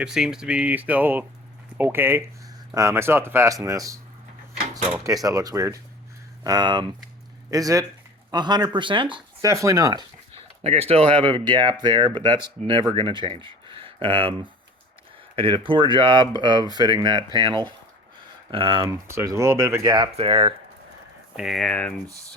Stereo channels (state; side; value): normal; both; correlation 0.41